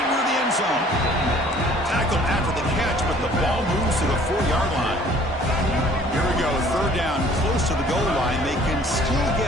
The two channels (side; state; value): both; normal; correlation 0.54